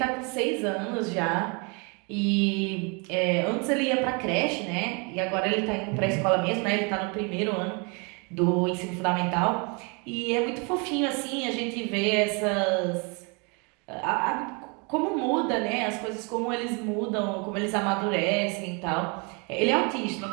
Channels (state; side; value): quieter; left; 32.7 dB